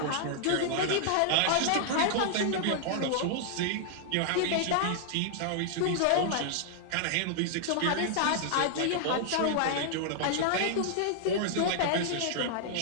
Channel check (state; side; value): different; both; correlation -0.01